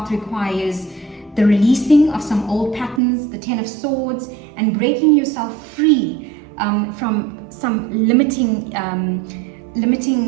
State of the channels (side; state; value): left; drops out; at 3.0 s